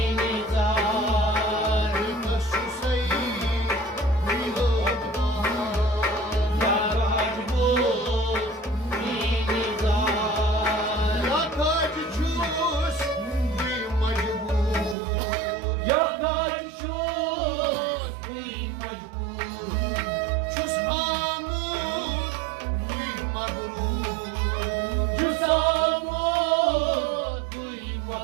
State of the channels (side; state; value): left; drops out; at 15.0 s